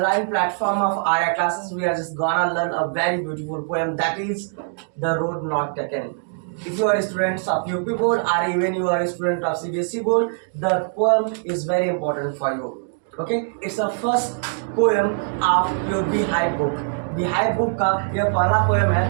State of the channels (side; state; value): left; silent; digital silence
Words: platform of Arya classes we are just gonna learn a very beautiful poem that is The Road Not Taken. If you are students of UP board or even you are a student of CBSE board, the poem is very important for you. Okay, it's the first poem of your Beehive book. Beehive book का यह पहला poem है